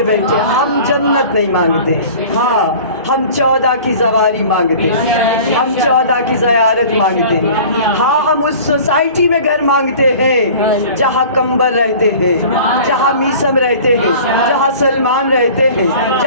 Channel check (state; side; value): inverted; both; correlation -0.43